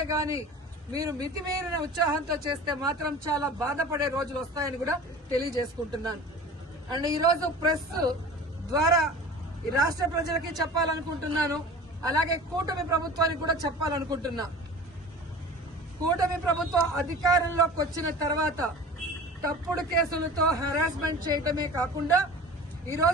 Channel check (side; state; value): both; normal; correlation 0.39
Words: మీరు మితిమీరిన ఉత్సాహంతో చేస్తే మాత్రం చాలా బాధపడే రోజులు వస్తాయని కూడా తెలియజేసుకుంటున్నాను. అండ్ ఈరోజు ప్రెస్ ద్వారా ఈ రాష్ట్ర ప్రజలకి చెప్పాలనుకుంటున్నాను, అలాగే కూటమి ప్రభుత్వానికి కూడా చెప్పాలనుకుంటున్నా. కూటమి ప్రభుత్వం అధికారంలోకి వచ్చిన తర్వాత తప్పుడు కేసులతో హెరాస్మెంట్ చేయటమే కాకుండా